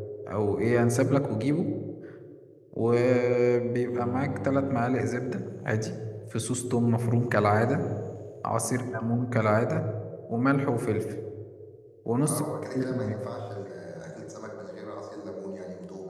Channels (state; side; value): identical; both; correlation 1.00